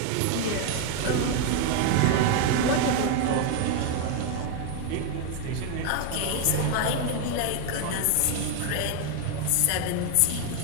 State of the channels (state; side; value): different; both; correlation 0.01